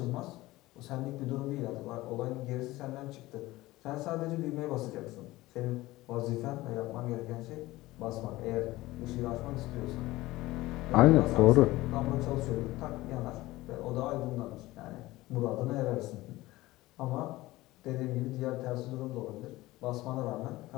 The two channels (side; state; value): right; quieter; 18.4 dB